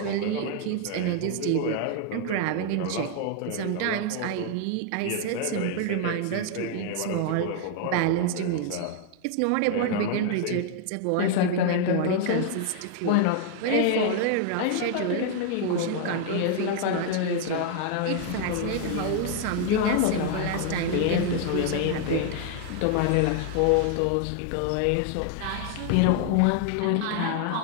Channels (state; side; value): different; both; correlation 0.00